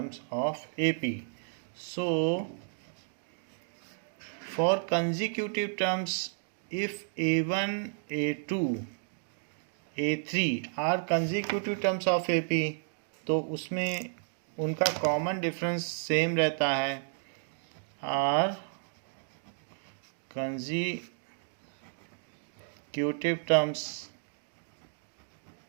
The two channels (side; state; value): left; silent; digital silence